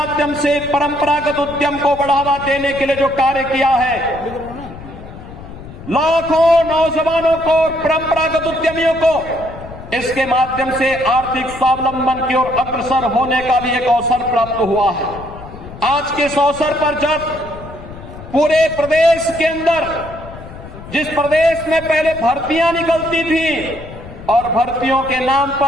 से परंपरागत उद्यम को बढ़ावा देने के लिए जो कार्य किया है, लाखों नौजवानों को और परंपरागत उद्यमियों को इसके माध्यम से आर्थिक स्वावलंबन की ओर अग्रसर होने का भी एक अवसर प्राप्त हुआ है। आज के इस अवसर पर जब पूरे प्रदेश के अंदर, जिस प्रदेश में पहले भर्तियां निकलती थी और भर्तियों के नाम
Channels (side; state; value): left; noise; rumble, 15 dB below the sound